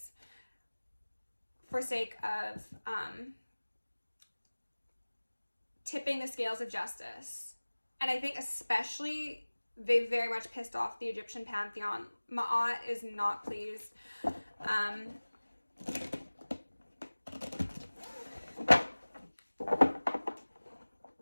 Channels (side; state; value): both; inverted; correlation -1.00